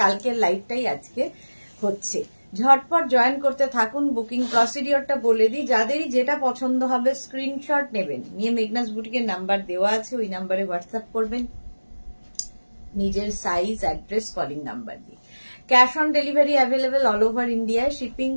কালকের লাইভটাই আজকে হচ্ছে। ঝটপট জয়েন করতে থাকুন। বুকিং প্রসিডিওরটা বলে দিই, যাদেরই যেটা পছন্দ হবে স্ক্রিনশট নেবেন, নিয়ে মেঘনাস বুটিকের নাম্বার দেওয়া আছে, ওই নাম্বারে হোয়াটসঅ্যাপ করবেন নিজের সাইজ, অ্যাড্রেস, কলিং নাম্বার দিয়ে। Cash on delivery available all over ইন্ডিয়ায়। শিপিং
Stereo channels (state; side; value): inverted; both; correlation -1.00